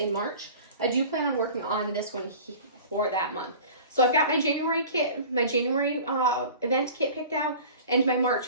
March. I do plan on working on this one for that month. So I've got my January kit, my January event kit picked out, and my March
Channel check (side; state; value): both; inverted; correlation -0.41